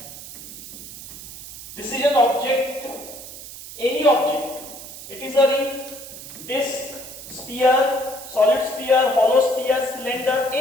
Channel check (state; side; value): noise; right; hiss, 13 dB below the sound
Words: this is an object, any object. It is a ring, disc, sphere, solid sphere, hollow sphere, cylinder,